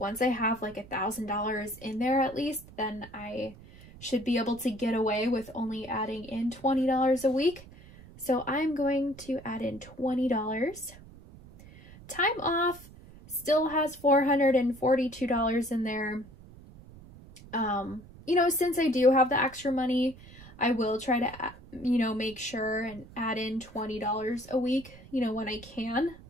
I have like $1,000 in there at least, then I should be able to get away with only adding in $20 a week. So I'm going to add in $20. Time off still has $442 in there. You know, since I do have the extra money, I will try to, you know, make sure and add in $20 a week, you know, when I can.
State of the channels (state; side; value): noise; right; rumble, 20 dB below the sound